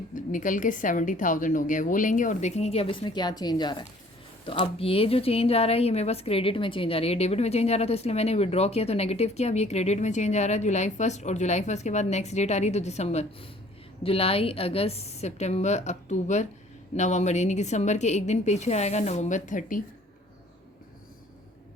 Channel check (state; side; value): normal; both; correlation 0.55